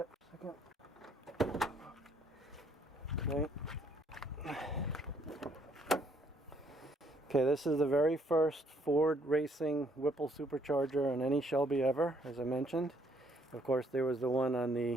for a second. Okay. Okay, this is the very first Ford Racing Whipple supercharger on any Shelby ever, as I mentioned. Of course, there was the one on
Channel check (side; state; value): both; normal; correlation 0.67